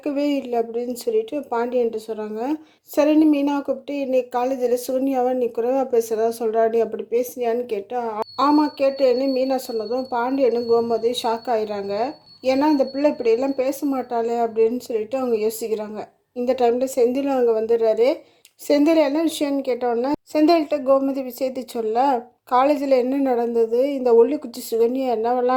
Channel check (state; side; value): identical; both; correlation 1.00